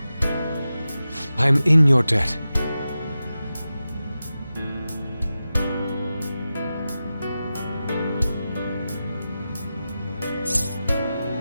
I am in your debt.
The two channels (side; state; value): both; inverted; correlation -0.93